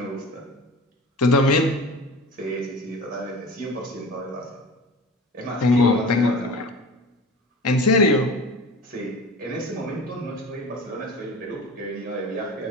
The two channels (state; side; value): normal; both; correlation 0.36